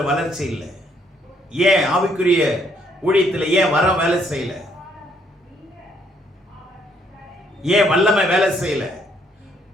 வளர்ச்சி இல்லை? ஏன் ஆவிக்குரிய ஊழியத்தில் ஏன் வர வேலை செய்யல? ஏன் வல்லமை வேலை செய்யல?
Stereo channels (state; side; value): normal; both; correlation 0.69